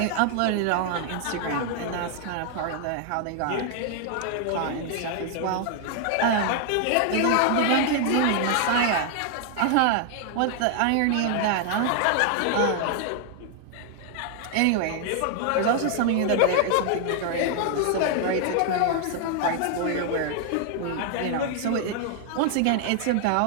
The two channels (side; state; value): both; different; correlation 0.00